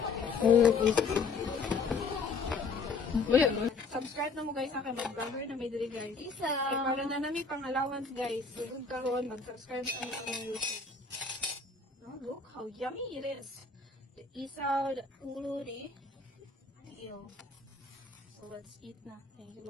Subscribe na mo guys sa akin, mag-vlogger na may dili guys. Ay, para na namin pang allowance guys. Huwag karoon, mag-subscribe sa aming YouTube. Oh, look how yummy it is. The isaw, the ulo, the tiil. So let's eat na. Thank you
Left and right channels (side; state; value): right; quieter; 4.5 dB